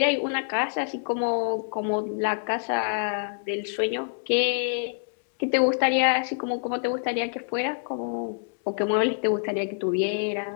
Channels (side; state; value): right; silent; digital silence